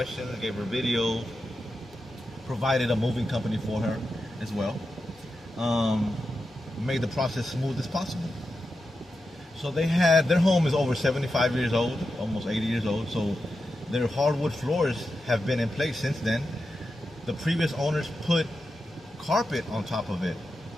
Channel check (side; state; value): both; normal; correlation 0.89